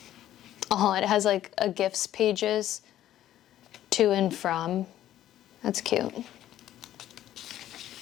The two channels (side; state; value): right; quieter; 12.5 dB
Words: Oh, it has like a gifts pages to and from. That's cute.